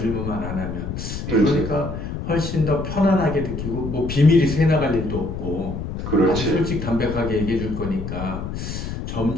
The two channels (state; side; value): noise; left; rumble, 6 dB below the sound